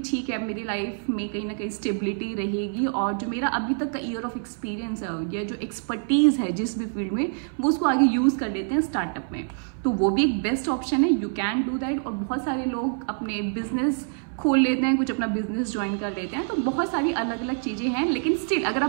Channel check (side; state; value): left; silent; 58 dB below the other